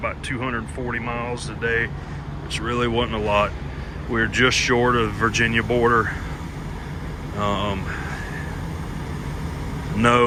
240 miles today, which really wasn't a lot. We're just short of the Virginia border.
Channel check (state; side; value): identical; both; correlation 1.00